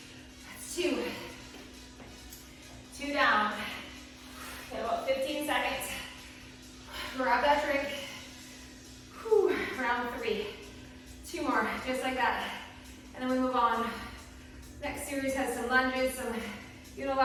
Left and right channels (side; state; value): both; identical; correlation 1.00